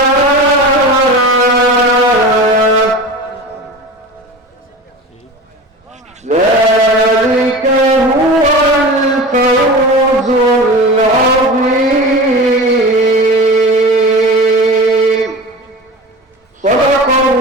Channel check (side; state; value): both; normal; correlation 0.32